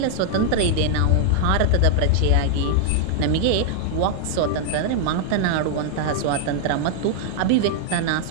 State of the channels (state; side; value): different; both; correlation 0.00